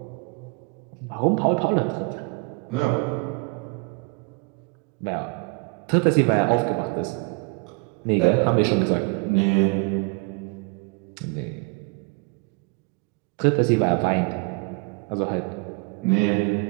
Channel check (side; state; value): left; quieter; 31.3 dB